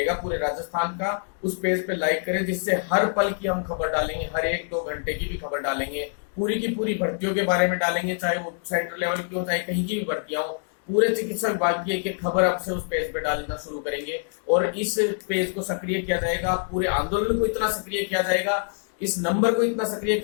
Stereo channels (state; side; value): silent; right; digital silence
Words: पूरे राजस्थान का, उस पेज पे लाइक करें, जिससे हर पल की हम खबर डालेंगे, हर 1-2 घंटे की भी खबर डालेंगे, पूरी की पूरी भर्तियों के बारे में डालेंगे, चाहे वो सेंट्रल लेवल की हो, चाहे कहीं की भी भर्तियां हो। पूरे चिकित्सा विभाग की एक खबर अब से उस पेज पे डालना शुरू करेंगे, और इस पेज को सक्रिय किया जाएगा, पूरे आंदोलन को इतना सक्रिय किया जाएगा, इस नंबर को इतना सक्रिय